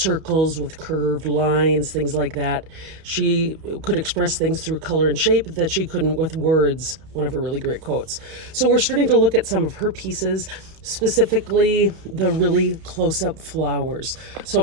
with curved lines, things like that. She could express things through color and shape that she couldn't with words, one of her really great quotes. So we're starting to look at some of her pieces, specifically the really close-up flowers. So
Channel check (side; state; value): left; late; 31 ms